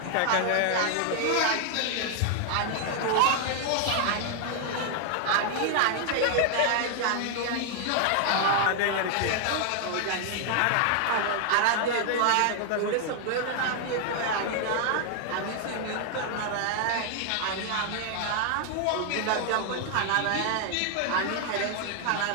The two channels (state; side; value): different; both; correlation 0.00